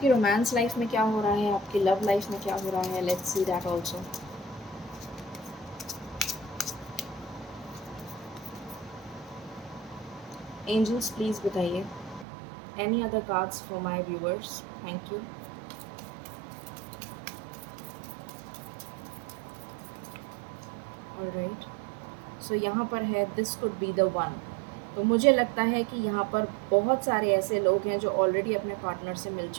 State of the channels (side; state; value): left; drops out; at 12.2 s